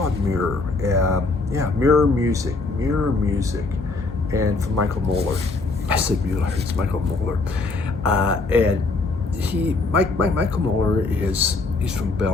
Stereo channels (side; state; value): right; quieter; 3.6 dB